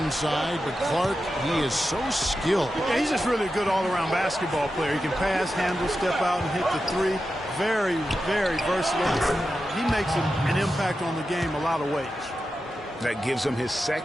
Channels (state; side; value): normal; both; correlation 0.91